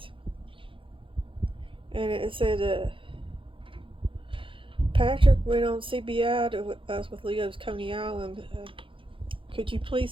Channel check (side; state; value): left; late; 0.25 ms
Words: and it said, Patrick went on CBI to us with Leo's Coney Island. Could you please